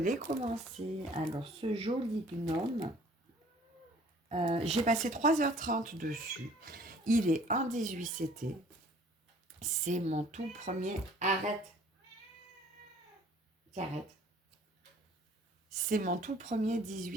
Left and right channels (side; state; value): both; normal; correlation 0.54